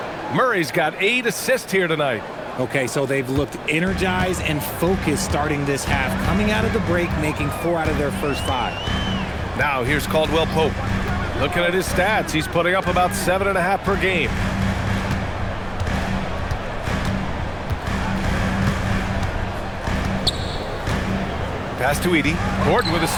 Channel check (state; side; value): identical; both; correlation 1.00